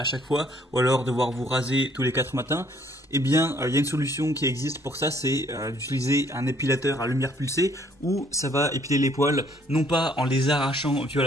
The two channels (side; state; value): both; normal; correlation 0.63